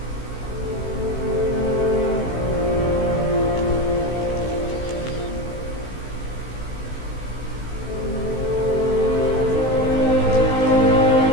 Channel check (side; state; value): right; late; 16 ms